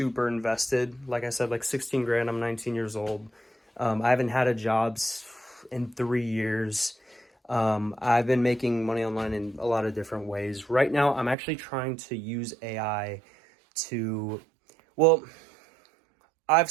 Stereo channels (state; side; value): drops out; left; at 11.4 s